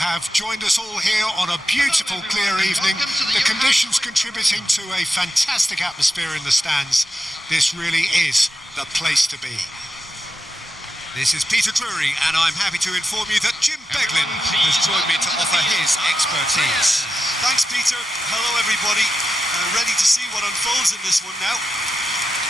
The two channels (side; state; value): both; normal; correlation 0.89